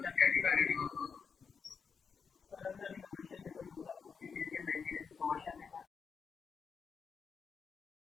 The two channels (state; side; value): quieter; right; 5.9 dB